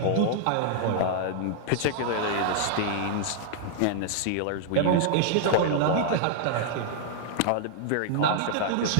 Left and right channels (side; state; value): both; different; correlation -0.01